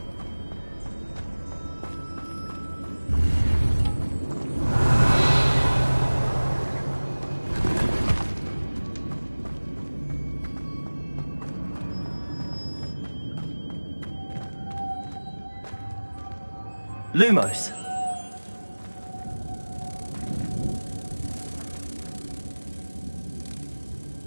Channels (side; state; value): both; inverted; correlation -1.00